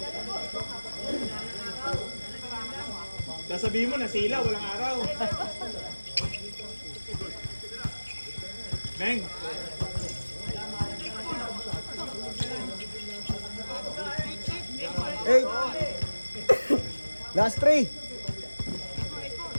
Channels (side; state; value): both; inverted; correlation -1.00